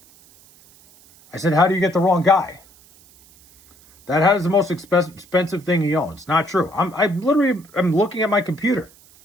I said, how do you get the wrong guy? That is the most expensive thing he owns. Not true. I'm looking at my computer.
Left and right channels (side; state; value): right; noise; hiss, 27 dB below the sound